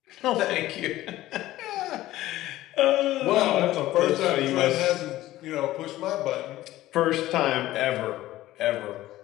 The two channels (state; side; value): quieter; right; 15.6 dB